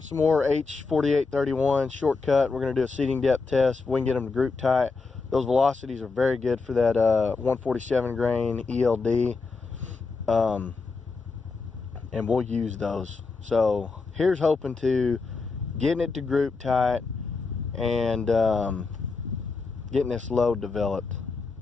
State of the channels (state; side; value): quieter; right; 4.3 dB